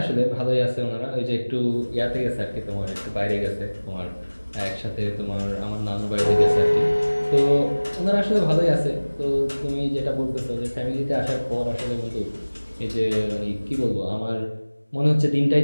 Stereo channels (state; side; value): inverted; both; correlation -1.00